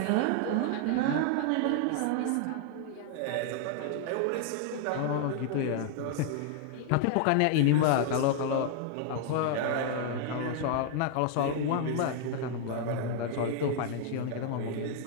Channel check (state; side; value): different; both; correlation 0.00